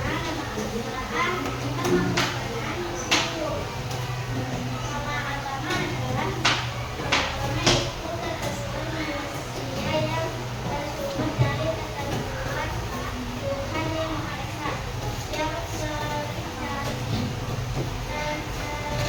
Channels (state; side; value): identical; both; correlation 1.00